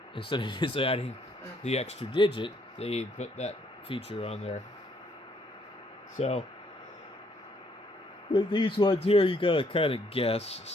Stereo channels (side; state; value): both; normal; correlation 0.69